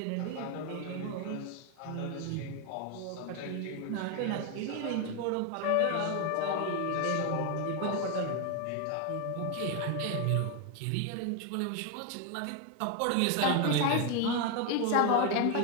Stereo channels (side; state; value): both; different; correlation 0.01